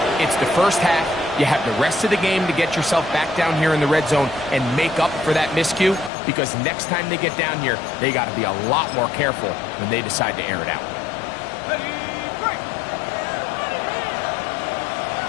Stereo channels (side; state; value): right; drops out; at 6.1 s